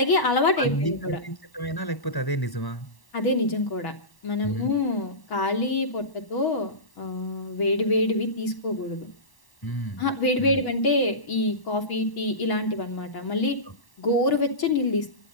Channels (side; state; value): right; late; 1.0 ms